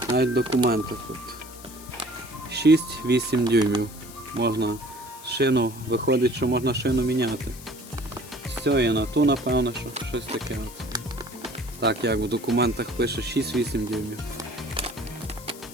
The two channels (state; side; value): noise; left; hiss, 17 dB below the sound